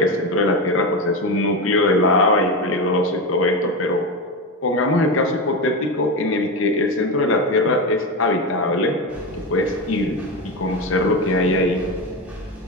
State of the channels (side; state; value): both; normal; correlation 0.17